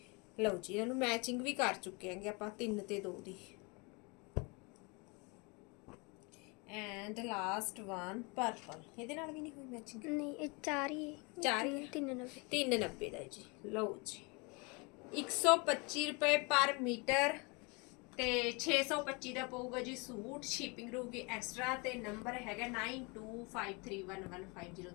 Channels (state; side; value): quieter; right; 29.7 dB